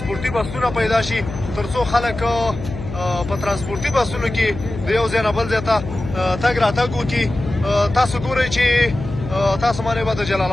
بسونه پیدا شي، تر څو خلک په ترانسپورتي بسونو کې د یو ځای نه بل ځای ته تګ راتګ وکړي. تاسو ګورئ چې تاسو باندې به د جلال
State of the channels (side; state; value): left; noise; hum, 9 dB below the sound